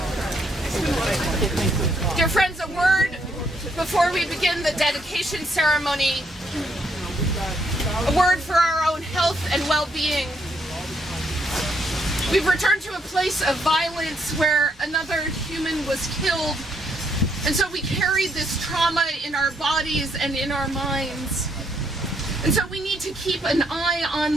Dear friends, a word before we begin the dedication ceremony. A word for our own health and well-being. We've returned to a place of violence where another human was killed, and so we carry this trauma in our bodies and in our minds. And so we need to keep an eye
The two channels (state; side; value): normal; both; correlation 0.73